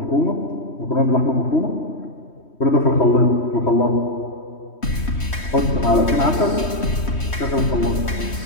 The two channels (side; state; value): right; late; 3.2 ms